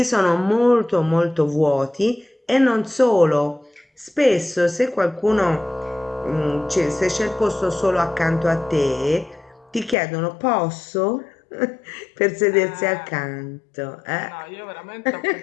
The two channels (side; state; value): right; drops out; at 10.0 s